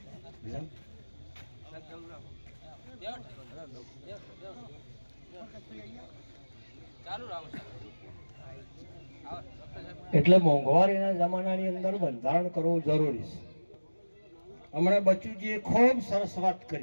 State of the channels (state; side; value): inverted; both; correlation -1.00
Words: એટલે મોંઘવારીના જમાનાની અંદર બંધારણ કરવું જરૂરી છે। હમણાં બચુજીએ ખૂબ સરસ વાત